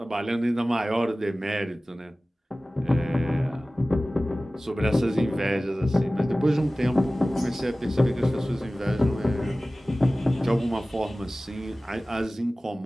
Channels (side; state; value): both; normal; correlation 0.97